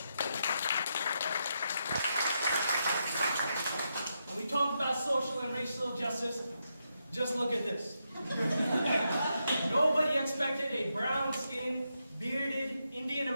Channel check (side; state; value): both; inverted; correlation -0.84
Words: When we talk about social and racial justice, just look at this. Nobody expected a brown-skinned, bearded,